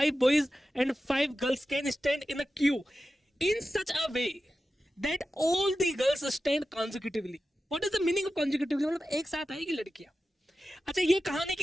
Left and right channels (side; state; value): both; normal; correlation 0.93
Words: boys and 5 girls can stand in a queue in such a way that all the girls stand consecutively. What is the meaning of consecutively? मतलब एक साथ आएगी लड़कियां। अच्छा, ये कहानी